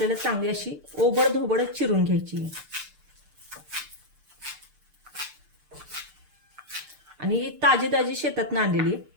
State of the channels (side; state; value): left; late; 6.7 ms